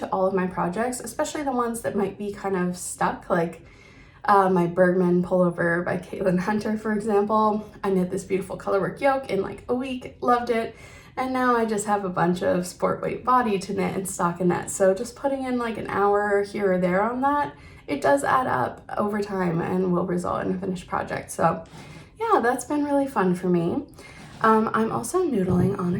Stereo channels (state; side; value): identical; both; correlation 1.00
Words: all of my projects, especially the ones that might be kind of stuck, like my Bergman pullover by Caitlin Hunter, for example. I knit this beautiful colorwork yoke in like a week, loved it, and now I just have a bunch of sport weight body to knit and stockinette. So just putting in like an hour here or there on that, it does add up over time and will result in a finished project. So yeah, that's been really fun for me. I'm also noodling on